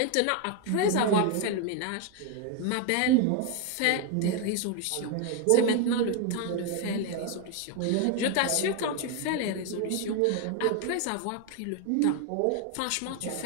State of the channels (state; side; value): different; both; correlation 0.01